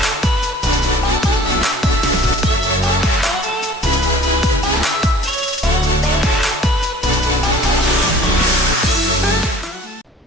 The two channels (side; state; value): both; normal; correlation 0.49